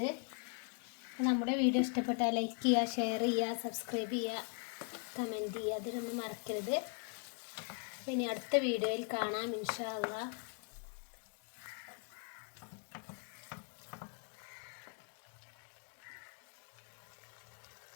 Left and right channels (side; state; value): right; quieter; 39.7 dB